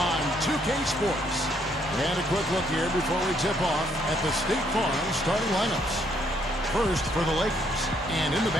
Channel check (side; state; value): both; normal; correlation 0.70